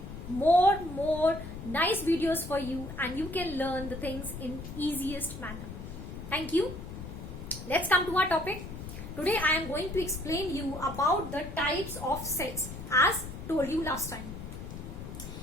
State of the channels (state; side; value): noise; left; rumble, 10 dB below the sound